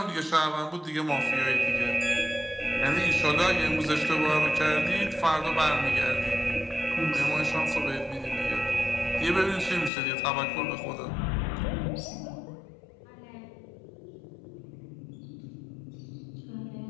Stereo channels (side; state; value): right; drops out; at 9.9 s